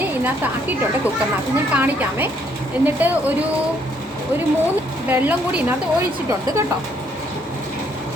ഇതിനകത്ത് ആക്കിയിട്ടുണ്ട് കുക്കറിനകത്ത്. ഞാൻ കാണിക്കാമേ. എന്നിട്ട് ഒരു 3 വെള്ളം കൂടി ഇതിനകത്ത് ഒഴിച്ചിട്ടുണ്ട് കേട്ടോ.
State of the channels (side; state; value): both; normal; correlation 0.68